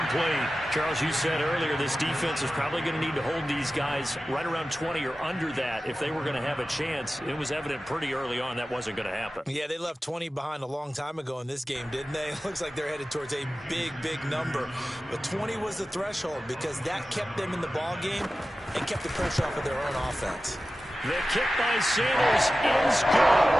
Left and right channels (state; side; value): normal; both; correlation 0.95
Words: Charles, you said earlier this defense is probably going to need to hold these guys right around 20 or under that if they were going to have a chance. It was evident pretty early on that wasn't going to happen. Yeah, they left 20 behind a long time ago in this game, didn't they? It looks like they're headed towards a big, big number. But 20 was the threshold because that kept them in the ball game and kept the pressure off of their own offense. The kick by Sanders is